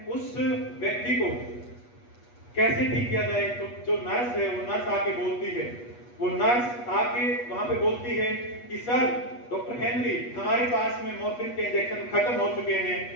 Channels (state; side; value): late; right; 8.3 ms